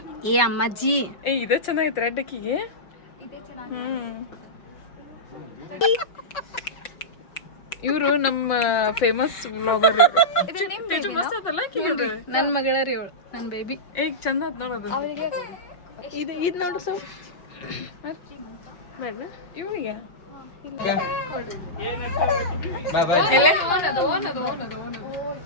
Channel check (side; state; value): right; late; 5.7 ms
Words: ಏ ಅಮ್ಮಾಜಿ ಇದು ಚೆನ್ನಾಗೈತೆ ರೆಡ್ ಅಕ್ಕಿಗೆ. ಇವರು ನಮ್ಮ ಫೇಮಸ್ ವ್ಲಾಗರ್. ನನ್ನ ಮಗಳ ರೀ ಅವಳು, ನನ್ನ ಬೇಬಿ. ಈಗ ಚಂದ ಆತ್ ನೋಡೋದು. ಇದು ನೋಡು ಸೊ ಇವನಿಗೆ